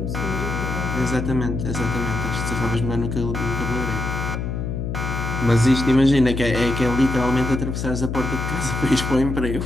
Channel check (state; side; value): noise; left; hum, 3 dB below the sound